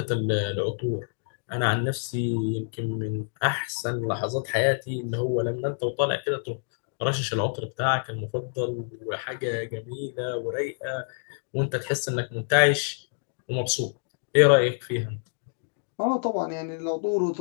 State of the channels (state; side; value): silent; right; digital silence